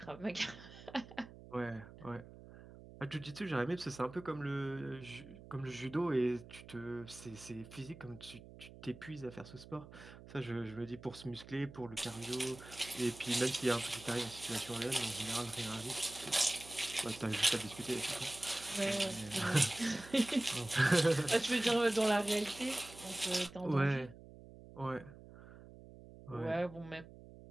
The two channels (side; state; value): right; noise; hum, 17 dB below the sound